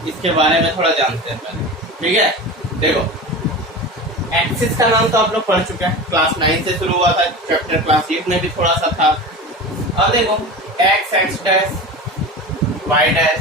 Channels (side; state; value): both; normal; correlation 0.30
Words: इसके बारे में थोड़ा जानते हैं पहले। ठीक है, देखो एक्सिस का नाम तो आप लोग पढ़ चुके हैं, क्लास 9 से शुरू हुआ था, चैप्टर क्लास 8 में भी थोड़ा सा था। अब देखो x x dash y